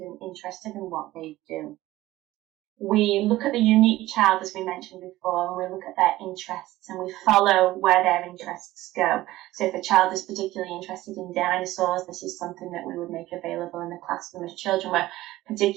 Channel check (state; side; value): quieter; left; 16.6 dB